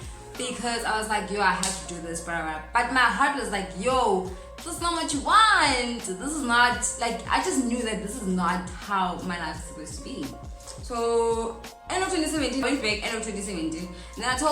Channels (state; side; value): identical; both; correlation 1.00